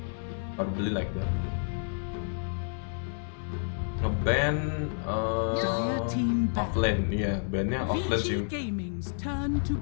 Probably like that. Ngeban Dire team ban. offlane, iya, bannya offlane sih. VG Gaming's turn to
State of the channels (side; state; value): right; silent; digital silence